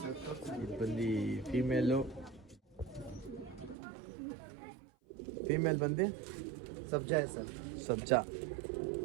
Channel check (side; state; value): left; drops out; at 3.8 s